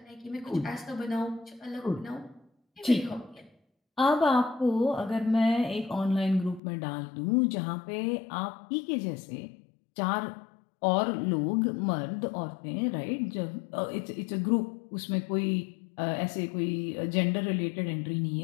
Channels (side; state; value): right; drops out; at 6.6 s